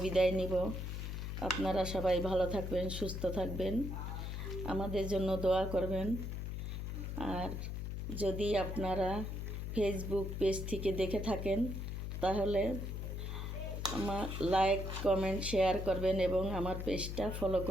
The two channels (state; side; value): noise; left; hum, 4 dB below the sound